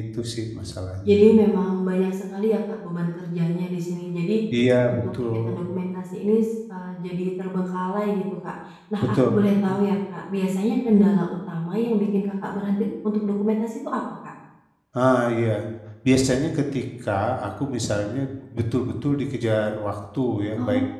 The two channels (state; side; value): identical; both; correlation 1.00